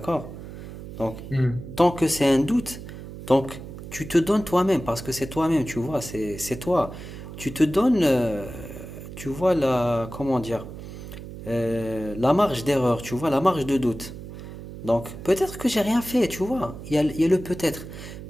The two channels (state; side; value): noise; right; hum, 12 dB below the sound